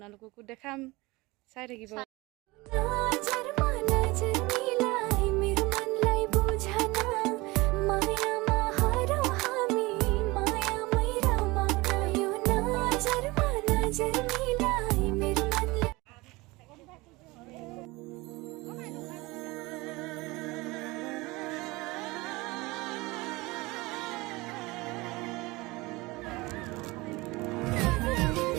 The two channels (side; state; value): left; quieter; 22.5 dB